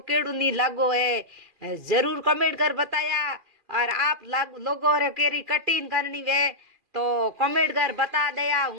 केड़ो नहीं लागो है जरूर कमेंट कर बताया और आप लोगों रे केरी कटिंग करनी वे तो कमेंट कर बता दया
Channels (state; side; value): late; left; 2.4 ms